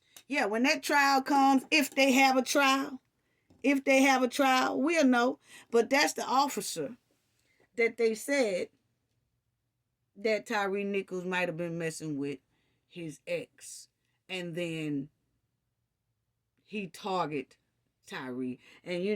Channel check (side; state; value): both; identical; correlation 1.00